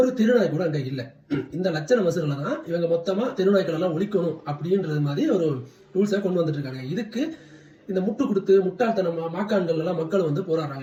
திருநாய் கூட அங்க இல்ல. இந்த லட்சண மசூரில் தான் இவங்க மொத்தமா தெருநாய்கள் எல்லாம் ஒழிக்கணும் அப்படின்றது மாதிரி ஒரு ரூல்ஸை கொண்டு வந்துட்டு இருக்காங்க. இதுக்கு இந்த முட்டு கொடுத்து முட்டாள்தனமா மாக்கான்கள் எல்லாம் மக்கள் வந்து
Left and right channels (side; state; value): both; identical; correlation 1.00